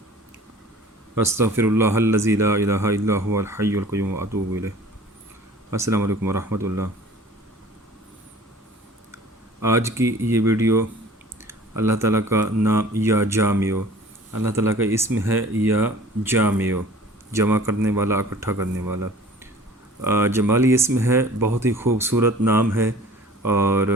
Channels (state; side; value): normal; both; correlation 0.47